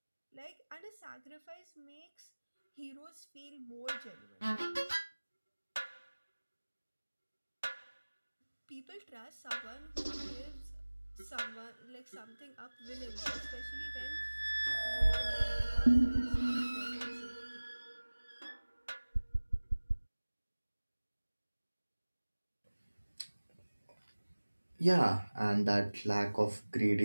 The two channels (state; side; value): inverted; both; correlation -1.00